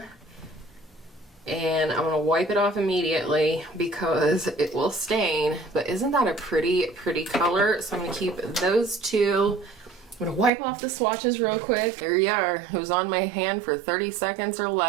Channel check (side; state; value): left; drops out; at 10.5 s